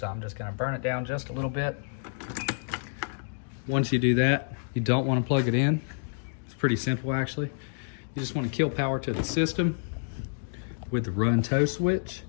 I'm just going to burn it down just a little bit. Once you do that, you don't want to plug it in. It's pretty simple actually. You just want to kill power to the system with the run tow switch.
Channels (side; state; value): right; silent; digital silence